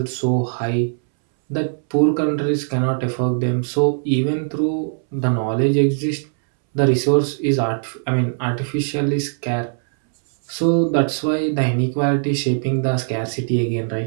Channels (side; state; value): left; silent; 66 dB below the other